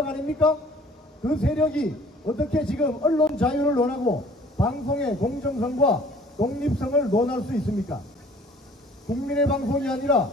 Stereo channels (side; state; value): both; normal; correlation 0.53